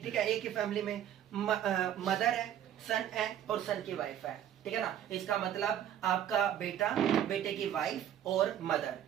ठीक है, एक ही फैमिली में मदर है, सन है और सन की वाइफ है। ठीक है ना? इसका मतलब आपका बेटा, बेटे की वाइफ और मदर।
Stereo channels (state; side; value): quieter; left; 10.5 dB